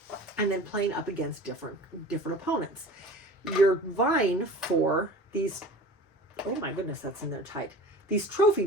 And then playing up against different opponents. You're vying for these, oh my goodness, that's in there tight. These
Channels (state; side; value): normal; both; correlation 0.39